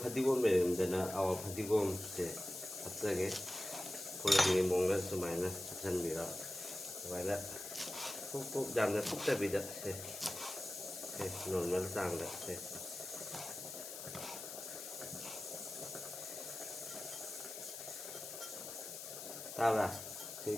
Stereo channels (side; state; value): left; noise; hiss, 9 dB below the sound